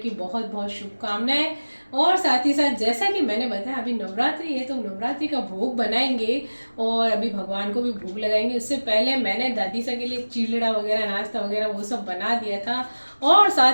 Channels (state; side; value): inverted; both; correlation -1.00